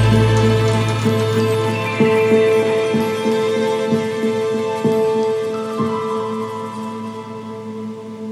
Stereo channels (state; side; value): identical; both; correlation 1.00